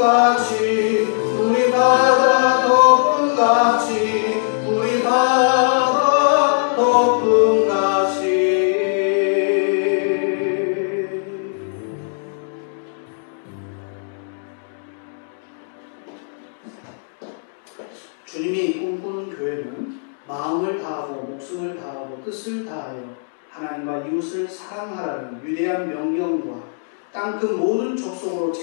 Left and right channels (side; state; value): right; silent; digital silence